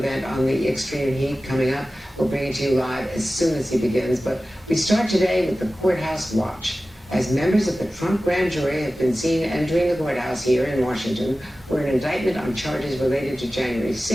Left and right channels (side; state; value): both; normal; correlation 0.96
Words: on the extreme heat coming up. We'll bring it to you live as soon as he begins. But we start today with the courthouse watch, as members of the Trump grand jury have been seen entering the courthouse here in Washington, where an indictment on charges related to January